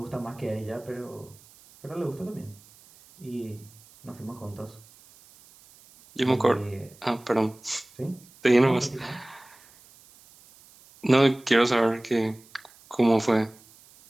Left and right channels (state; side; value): noise; right; hiss, 25 dB below the sound